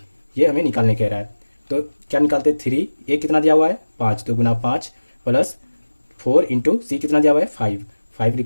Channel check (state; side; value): inverted; both; correlation -1.00